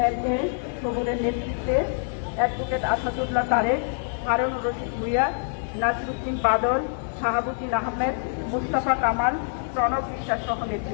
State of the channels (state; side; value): silent; right; digital silence